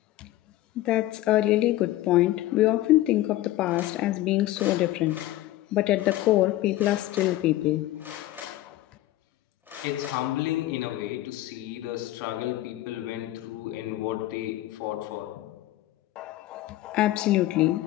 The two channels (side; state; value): right; quieter; 15.7 dB